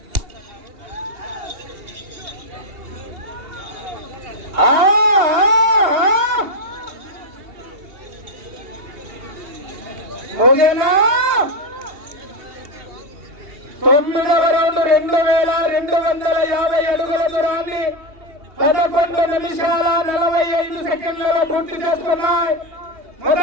ముగినా 9వ రౌండ్ 2250 అడుగుల దూరాన్ని 11 నిమిషాల 45 సెకండ్లలో పూర్తి చేసుకున్నాయి.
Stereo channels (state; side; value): late; left; 2.8 ms